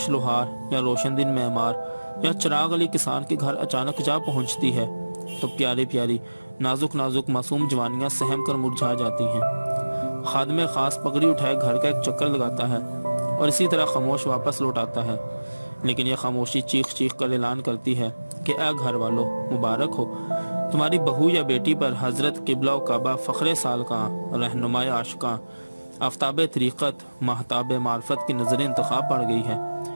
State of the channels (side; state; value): both; inverted; correlation -1.00